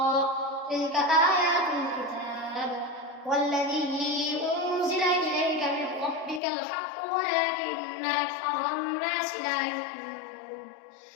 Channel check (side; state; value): right; drops out; at 6.4 s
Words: تلك آيات الكتاب والذي أنزل إليك من ربك الحق ولكن أكثر الناس لا يؤمنون